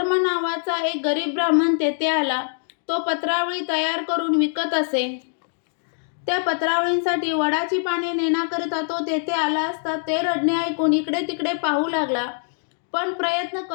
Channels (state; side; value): silent; right; 63 dB below the other